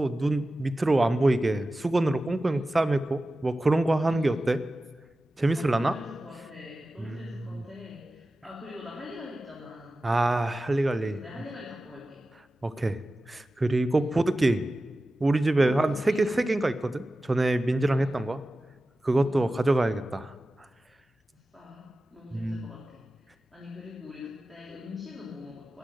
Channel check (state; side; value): normal; both; correlation 0.95